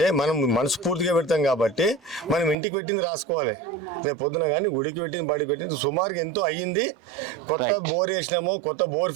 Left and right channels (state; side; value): drops out; left; at 2.6 s